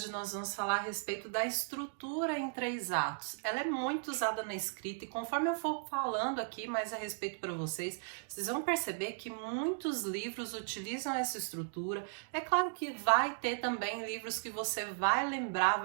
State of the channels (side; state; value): left; silent; digital silence